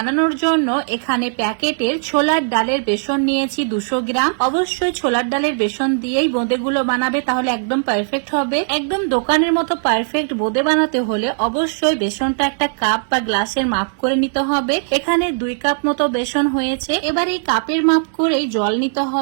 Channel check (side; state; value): left; silent; digital silence